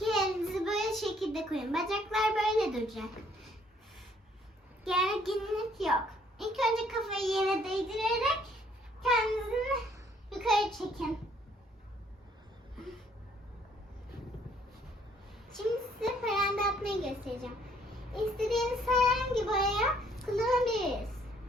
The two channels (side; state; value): both; normal; correlation 0.64